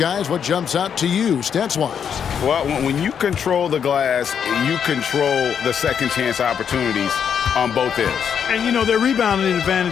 what jumps out to you, stats-wise? Well, when you control the glass, you control the second chance opportunities on both ends. And, you know, their rebounding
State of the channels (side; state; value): right; quieter; 7.7 dB